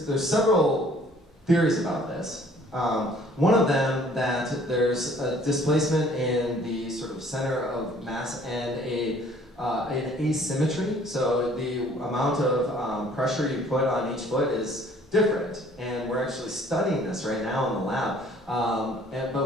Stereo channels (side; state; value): both; normal; correlation 0.56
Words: several theories about this. One of them, that there's a displacement in the sort of center of mass and an asymmetry. So the amount of pressure you put on each foot is different. And we're actually studying this right now in the lab.